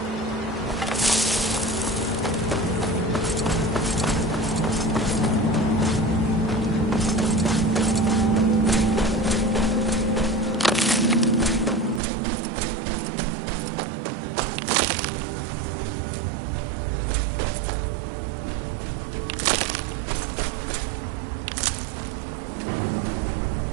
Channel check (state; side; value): drops out; left; at 12.0 s